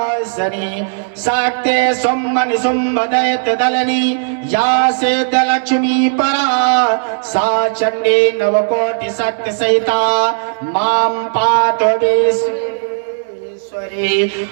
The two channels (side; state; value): left; silent; 62 dB below the other